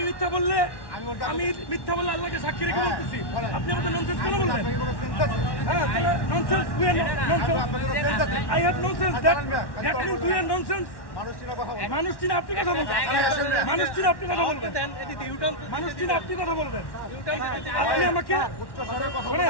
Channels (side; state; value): right; late; 1.1 ms